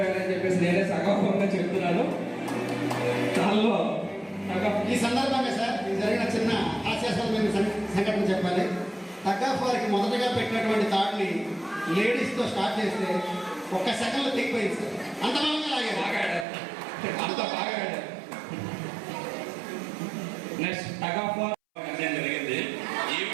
చెప్పేసి నేనే సగౌరవంగా చెప్తున్నాను. దానిలో ఈ సందర్భంగా సార్ ఇది జరిగిన చిన్న హాస్యాస్పదమైన సంఘటన చెప్పాలి. టగ్ ఆఫ్ వారికి మొదటగా పెట్టినటువంటి థాట్ని లేడీస్తో స్టార్ట్ చేస్తే ఒక్క సెకండ్లో తెగిపోయింది సార్. అంత బలంగా లాగారు. బాగా ఆడారు, అంత బాగా ఆడారు. నెక్స్ట్ టగ్ ఆఫ్ వార్ జరిగింది.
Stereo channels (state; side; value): drops out; left; at 16.4 s